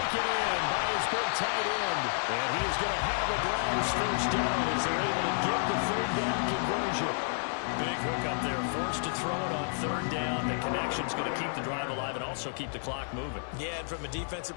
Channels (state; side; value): silent; right; digital silence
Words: in by his big tight end. And he is going to have a Browns first down as they're able to get the third down conversion. Big hook up there, forced to throw it on third down. The connection's going to keep the drive alive and also keep the clock moving. Yeah, and from a defensive